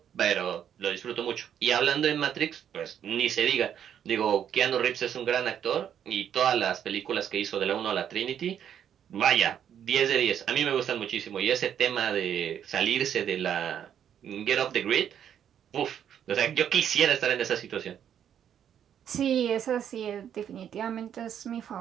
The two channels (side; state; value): left; quieter; 9.2 dB